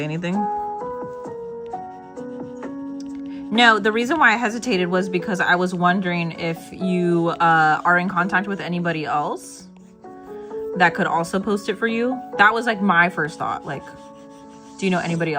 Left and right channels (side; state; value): both; identical; correlation 1.00